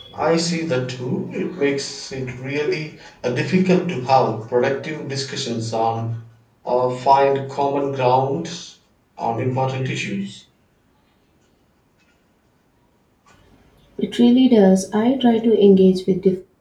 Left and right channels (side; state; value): both; identical; correlation 1.00